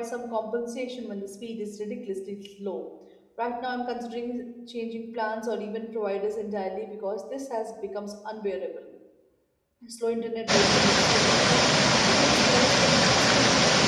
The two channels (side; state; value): both; identical; correlation 1.00